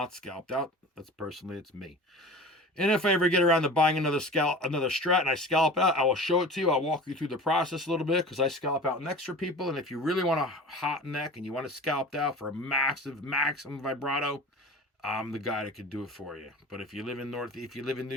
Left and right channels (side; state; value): both; normal; correlation 0.36